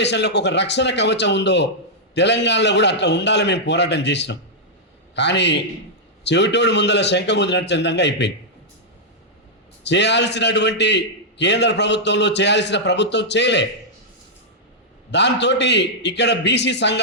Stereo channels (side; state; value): both; normal; correlation -0.08